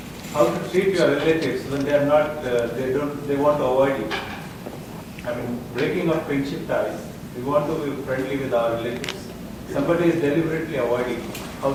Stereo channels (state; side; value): identical; both; correlation 1.00